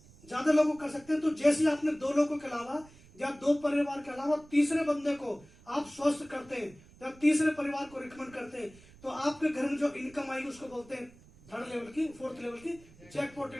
ज्यादा लोगों कर सकते हैं। तो जैसे आपने 2 लोगों के अलावा या 2 परिवार के अलावा तीसरे बंदे को आप स्वस्थ करते हैं, जब तीसरे परिवार को रिकमेंड करते हैं, तो आपके घर में जो इनकम आएगी उसको बोलते हैं 3rd लेवल की, 4th लेवल की जैकपॉट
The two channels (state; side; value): noise; right; rumble, 24 dB below the sound